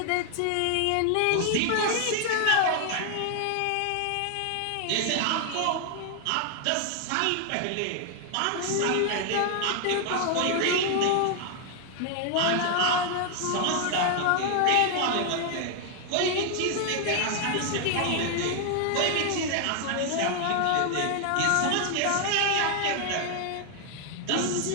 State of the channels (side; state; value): both; different; correlation 0.00